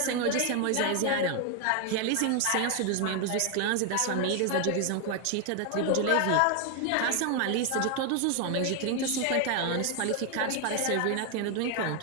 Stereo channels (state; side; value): different; both; correlation 0.01